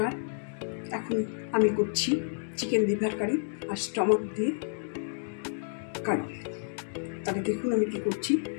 এখন আমি করছি চিকেন লিভার কারি আর স্টমাক দিয়ে কারি। তাহলে দেখুন আমি কি করছি।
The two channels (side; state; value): right; silent; digital silence